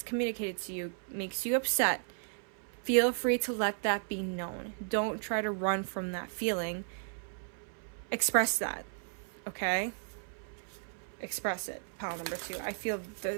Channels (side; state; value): left; silent; 55 dB below the other